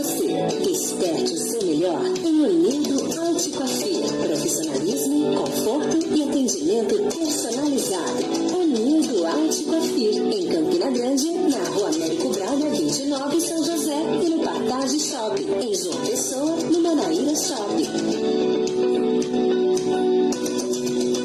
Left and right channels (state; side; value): identical; both; correlation 1.00